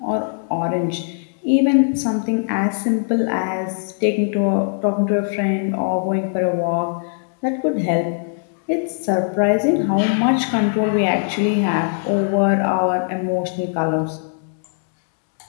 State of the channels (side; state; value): right; silent; 66 dB below the other